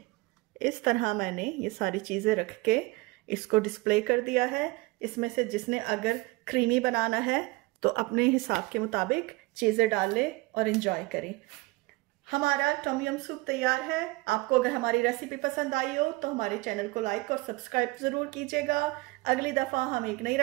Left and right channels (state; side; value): quieter; left; 22.8 dB